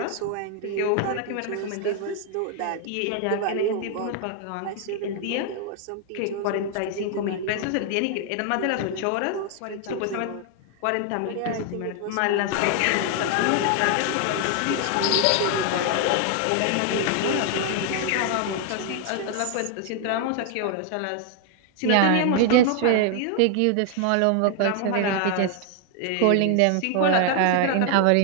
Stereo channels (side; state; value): both; different; correlation 0.00